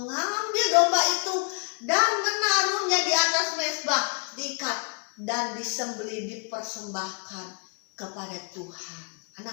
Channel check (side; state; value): right; quieter; 39.5 dB